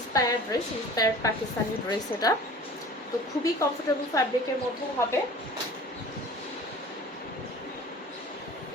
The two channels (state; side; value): normal; both; correlation 0.43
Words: dress, inspired Pakistani dress. এটা তো খুবই কমফোর্টেবল ফ্যাব্রিকের মধ্যে হবে